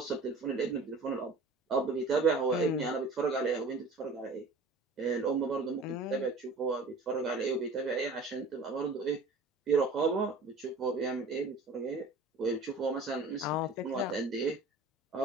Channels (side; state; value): left; quieter; 3.3 dB